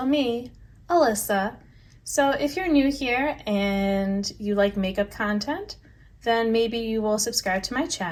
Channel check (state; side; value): identical; both; correlation 1.00